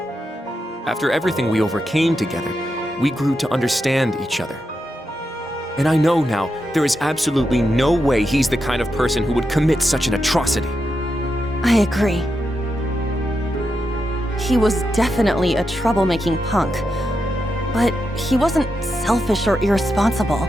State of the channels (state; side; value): normal; both; correlation 0.86